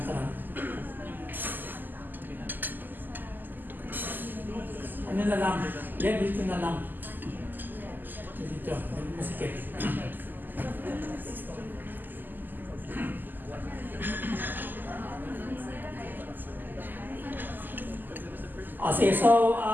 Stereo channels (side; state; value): left; late; 0.088 ms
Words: Ano na lang? Yen, dito na lang. Dito, masikip. Okay, so,